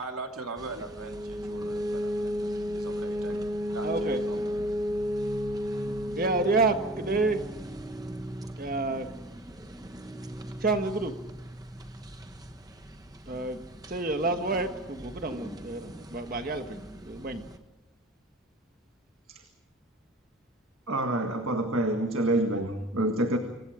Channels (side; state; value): both; normal; correlation 0.42